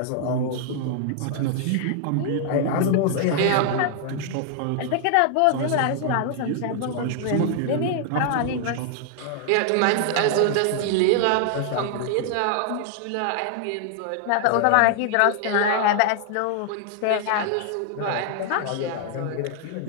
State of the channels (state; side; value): different; both; correlation 0.00